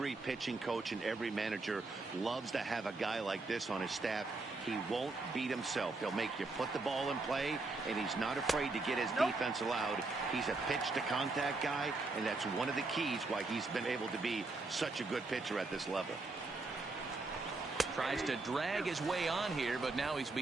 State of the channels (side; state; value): left; quieter; 3.4 dB